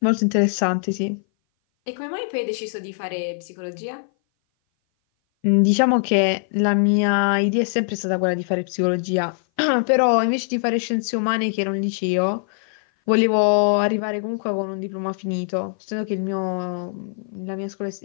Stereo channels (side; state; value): right; silent; 58 dB below the other